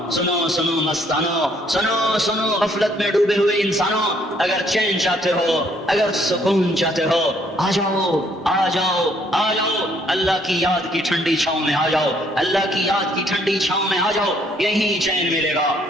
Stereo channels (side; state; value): both; normal; correlation 0.66